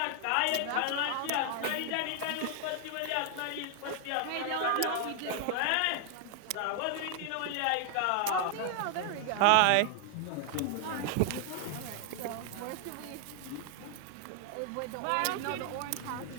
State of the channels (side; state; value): both; different; correlation 0.00